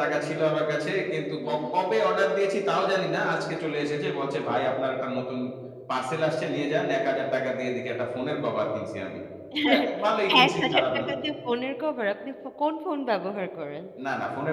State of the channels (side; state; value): both; identical; correlation 1.00